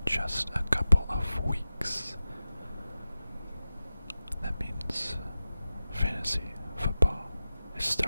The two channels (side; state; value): both; inverted; correlation -0.94